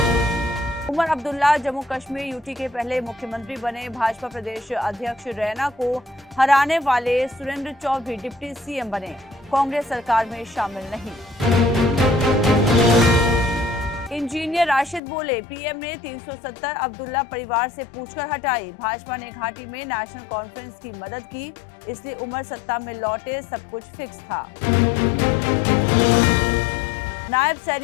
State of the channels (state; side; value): drops out; right; at 15.0 s